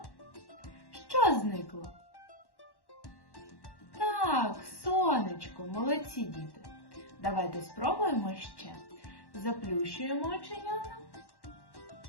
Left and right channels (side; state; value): right; late; 1.1 ms